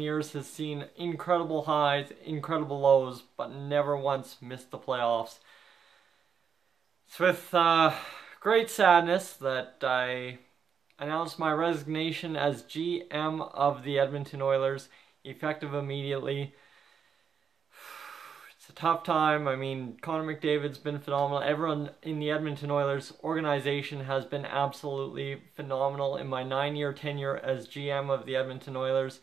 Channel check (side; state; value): left; quieter; 6.9 dB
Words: has seen incredible highs, incredible lows, but never once missed the playoffs. It's with great sadness that I announced my resignation as GM of the Edmonton Oilers, effective immediately. It's a tough time. I mean, Connor McDavid's been phenomenal. Everyone in the Edmonton Oilers organization has been absolutely phenomenal in my 9-year tenure as GM of the Edmonton Oilers.